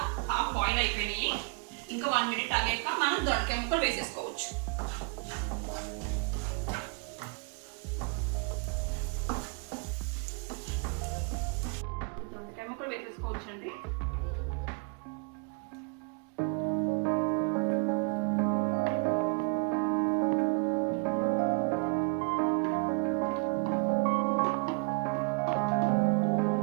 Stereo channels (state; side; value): quieter; left; 35.4 dB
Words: హాఫ్ బాయిల్ అయిపోయినాయి. ఇంకా 1 మినిట్ ఆగాక మనం దొండకాయ ముక్కలు వేసేసుకోవచ్చు. దొండకాయ ముక్కలు వేసేసుకోవచ్చు అండి.